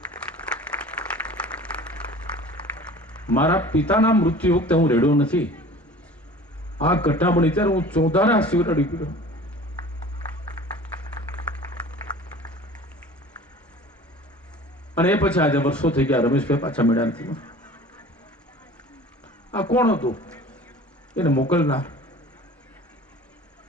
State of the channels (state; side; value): normal; both; correlation 0.43